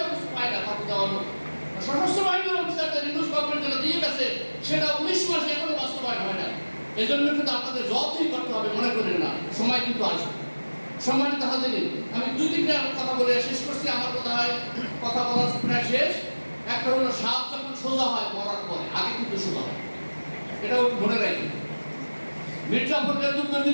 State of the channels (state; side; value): inverted; both; correlation -1.00